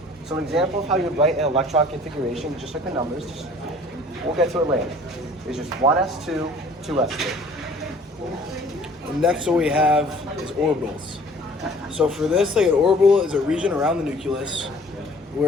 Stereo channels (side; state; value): both; normal; correlation 0.52